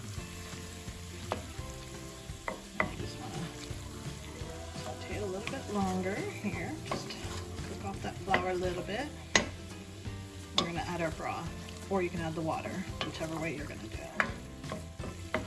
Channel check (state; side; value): identical; both; correlation 1.00